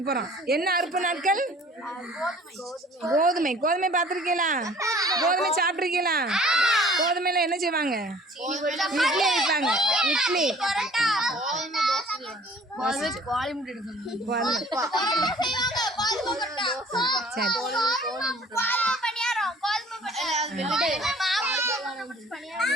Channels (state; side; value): normal; both; correlation 0.51